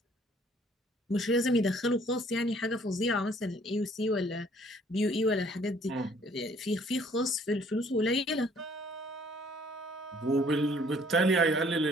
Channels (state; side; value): normal; both; correlation 0.60